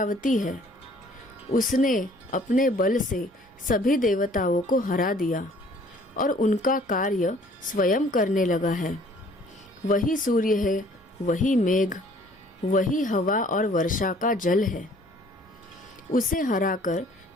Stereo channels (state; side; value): normal; both; correlation 0.56